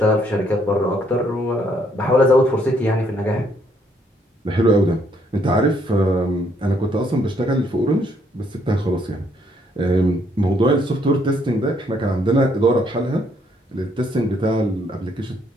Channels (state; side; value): normal; both; correlation 0.69